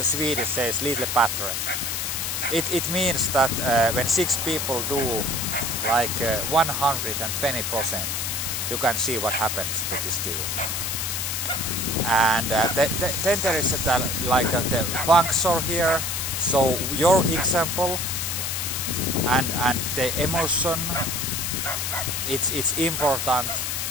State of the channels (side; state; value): left; noise; hiss, 1 dB below the sound